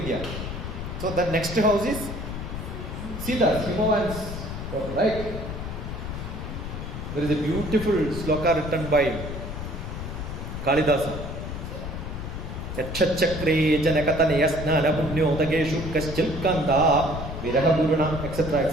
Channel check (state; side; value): noise; left; rumble, 7 dB below the sound